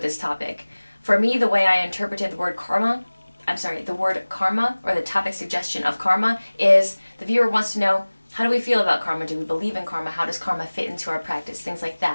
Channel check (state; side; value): inverted; both; correlation -1.00